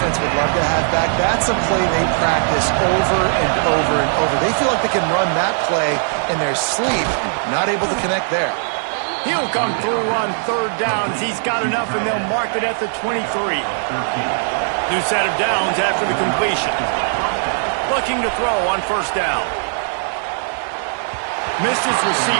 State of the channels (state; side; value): silent; left; digital silence